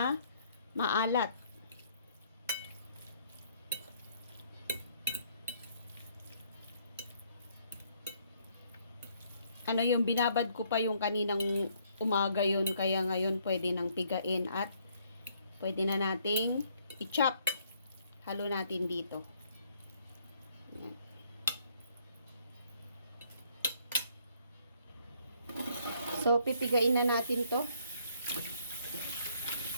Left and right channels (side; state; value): both; inverted; correlation -0.67